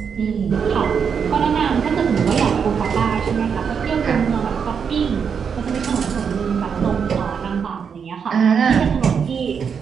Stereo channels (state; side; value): quieter; left; 6.7 dB